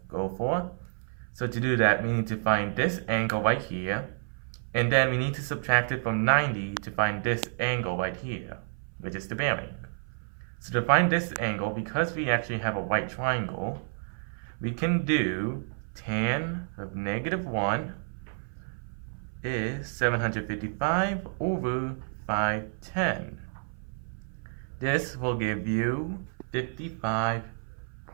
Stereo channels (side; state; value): left; silent; 58 dB below the other